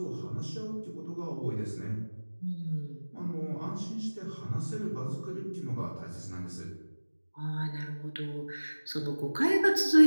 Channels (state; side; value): inverted; both; correlation -1.00